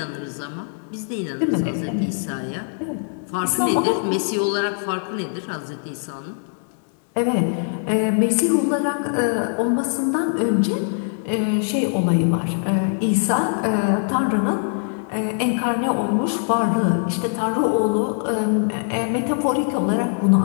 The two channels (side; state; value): right; silent; digital silence